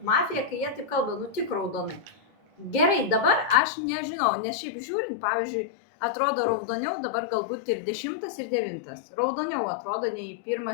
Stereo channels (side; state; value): right; drops out; at 3.6 s